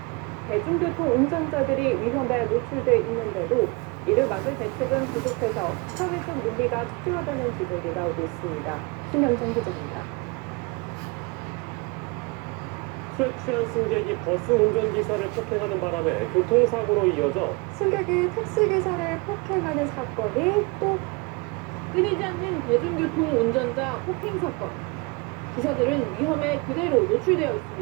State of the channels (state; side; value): quieter; left; 27.7 dB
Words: 대중교통 운전자들이 위험에 노출돼 있는데도 이를 막을 대책은 부족해서 사회적 논의가 필요하다는 지적이 나오고 있습니다. 신현정 기자입니다. 술에 취한 승객이 버스 운전기사를 폭행하는 바람에 교통사고로 이어져 승객이 택시기사를 폭행하는 사건이 또 끊이지 않는 대중교통 운전자 폭행 사건. 기사들은 위험에 그대로 노출되어